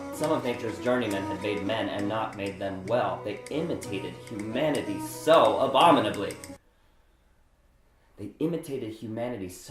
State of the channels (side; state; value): both; identical; correlation 1.00